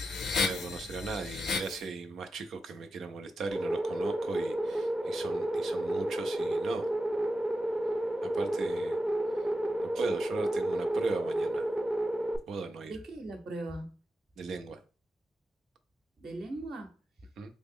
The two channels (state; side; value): normal; both; correlation 0.90